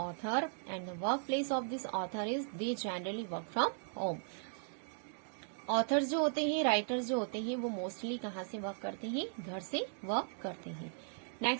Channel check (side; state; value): left; silent; digital silence